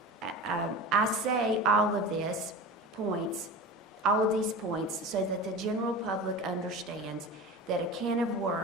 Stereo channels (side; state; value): both; normal; correlation 0.32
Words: points so that the general public understands that a can of